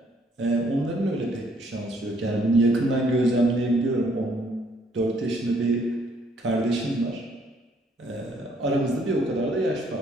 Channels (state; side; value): normal; both; correlation 0.66